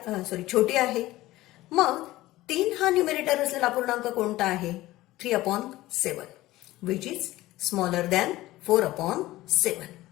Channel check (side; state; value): right; quieter; 17.2 dB